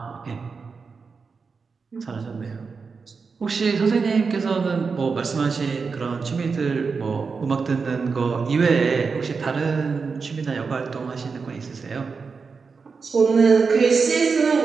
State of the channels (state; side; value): quieter; left; 5.0 dB